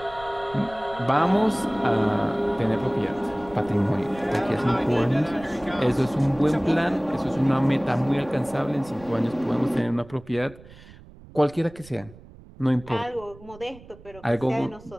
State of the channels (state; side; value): noise; right; rumble, 20 dB below the sound